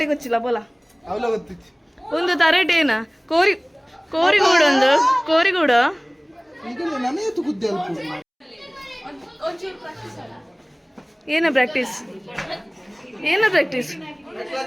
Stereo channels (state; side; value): identical; both; correlation 1.00